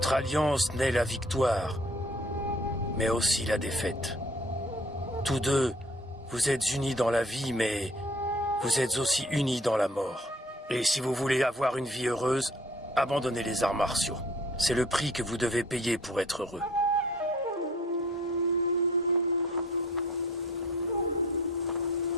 alliance naît la victoire, mais aussi la défaite. Tous deux, vous êtes unis dans la vie, mais vous êtes aussi unis dans la mort. Et si vous voulez avoir une vie heureuse, abandonnez les arts martiaux. C'est le prix que vous devez payer pour être heureux.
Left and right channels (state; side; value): normal; both; correlation 0.54